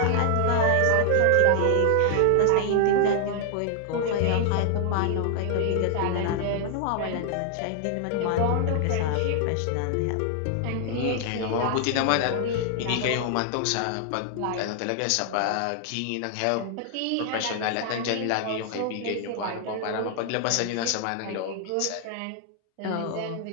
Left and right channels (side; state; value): both; different; correlation 0.00